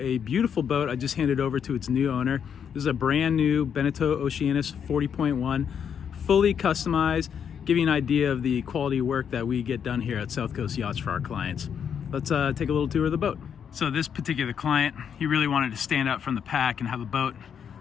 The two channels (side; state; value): right; quieter; 7.8 dB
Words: beautiful boat I just handed over to its new owner. This is a brand new Beneteau Oceanis 40.1, fully customized, give you an idea of the quality work that we get done here at South Coast Yachts for our clients. Let's take a little tour of the boat. So this particular client, he really wanted to stand out from the pack and have a boat